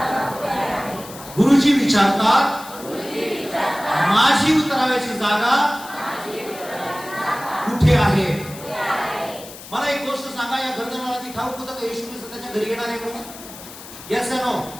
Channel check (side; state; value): left; noise; hiss, 15 dB below the sound